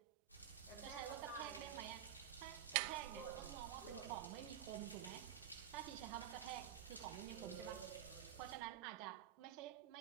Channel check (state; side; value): quieter; left; 10.2 dB